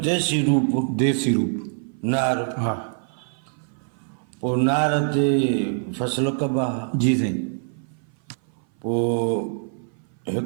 रूप नार। हा पोइ नार ते फसल कबा। जी साईं। पोइ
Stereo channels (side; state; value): left; silent; 57 dB below the other